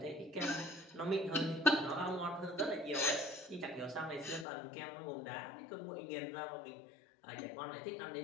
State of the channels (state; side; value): drops out; right; at 4.5 s